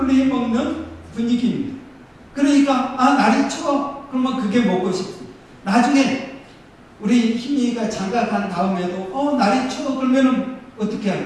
해 먹는 분위기입니다. 그러니까 날이 추워, 그러면 그게 먹고 싶습니다. 나중에 우리 희미가 장가 간 다음에도 날이 추워, 그러면은 어떻게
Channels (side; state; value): both; identical; correlation 1.00